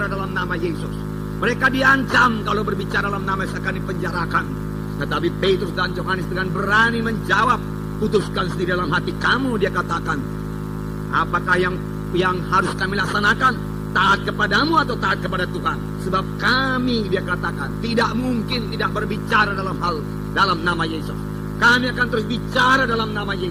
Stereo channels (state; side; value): identical; both; correlation 1.00